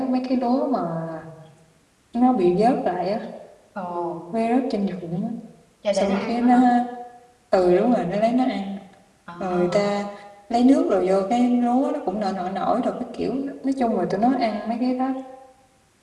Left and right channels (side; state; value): both; identical; correlation 1.00